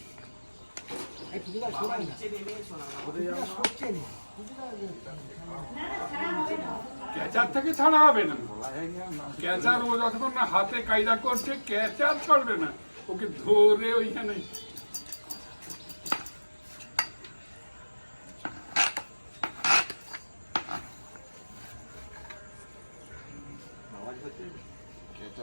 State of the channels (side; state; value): both; inverted; correlation -1.00